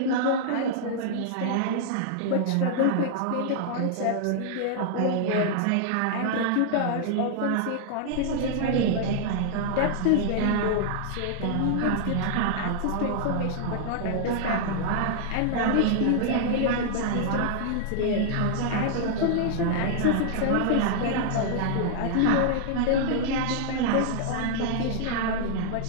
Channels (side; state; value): both; different; correlation -0.01